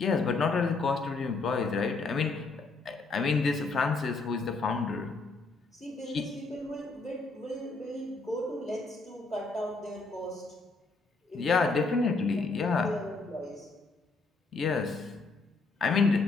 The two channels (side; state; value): right; quieter; 3.8 dB